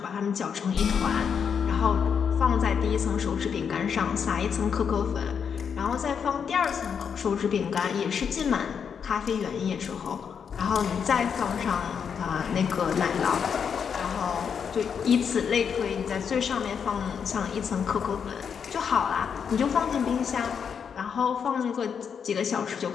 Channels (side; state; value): right; quieter; 7.0 dB